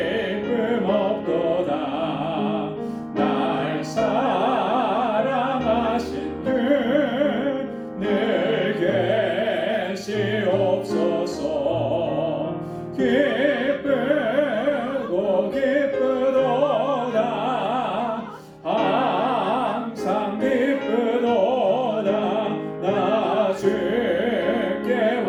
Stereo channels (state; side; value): identical; both; correlation 1.00